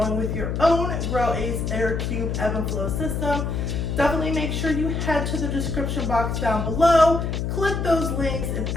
with your own GrowAce AirCube Ebb and Flow system, definitely make sure you head to the description box down below, click those links and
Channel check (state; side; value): noise; left; hum, 1 dB below the sound